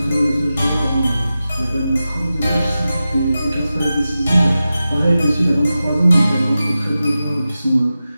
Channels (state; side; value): inverted; both; correlation -0.93